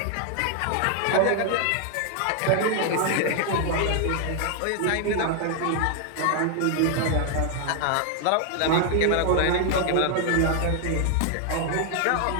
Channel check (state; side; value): different; both; correlation 0.00